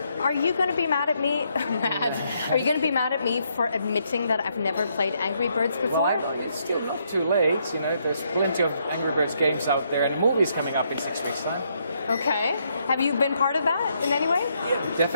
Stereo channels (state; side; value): inverted; both; correlation -0.75